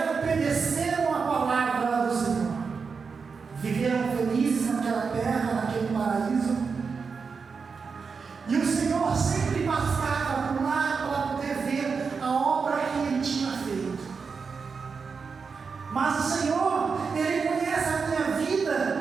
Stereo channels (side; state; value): left; quieter; 5.3 dB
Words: obedeceram a palavra do Senhor. Viveram felizes naquela terra, naquele paraíso. E o Senhor sempre passava por lá para poder ver a obra que Ele tinha feito. Mas o Senhor, Ele conhece a minha